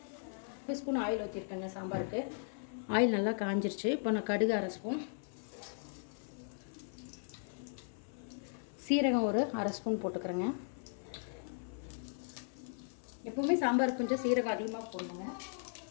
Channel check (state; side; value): silent; right; 53 dB below the other